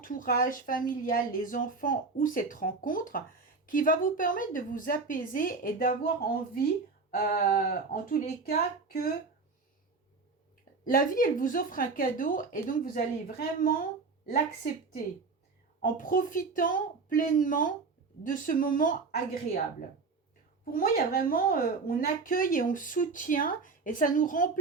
familial, les enfants ou cette rencontre qui va vous permettre de vous apaiser et d'avoir envie, en tous les cas, que la vie, elle vous offre un cadeau et donc vous allez vraiment l'accepter en profitant pleinement de ce moment agréable. Pour moi, il y a vraiment, on accueille et on soutient et ça nous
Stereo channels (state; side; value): quieter; left; 4.3 dB